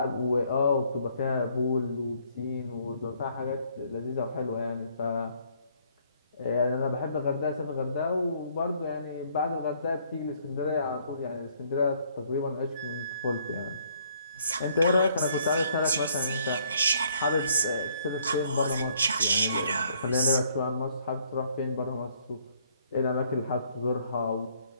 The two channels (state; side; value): inverted; both; correlation -0.65